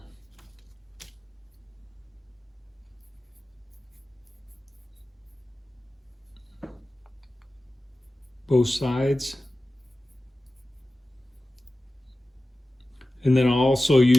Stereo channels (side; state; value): both; normal; correlation 0.96